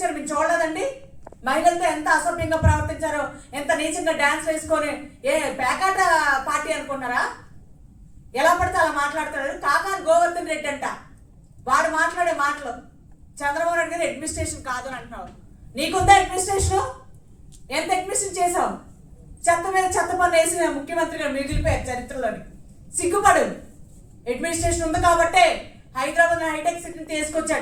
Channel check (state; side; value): identical; both; correlation 1.00